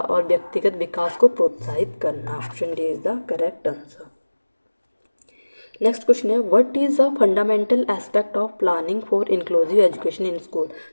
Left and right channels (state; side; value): inverted; both; correlation -1.00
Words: व्यक्तिगत विकास को प्रोत्साहित करना। Option D is the correct answer. Next question है, what is a fundamental aspect of planning for inclusive education in school.